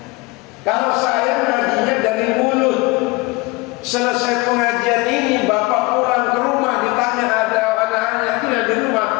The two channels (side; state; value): right; quieter; 24.2 dB